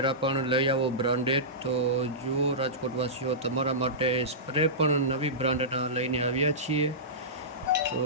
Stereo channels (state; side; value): normal; both; correlation -0.17